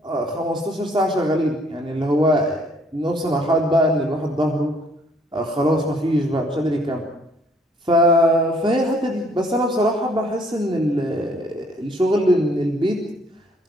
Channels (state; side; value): normal; both; correlation 0.63